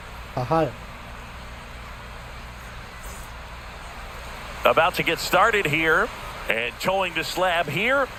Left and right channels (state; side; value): identical; both; correlation 1.00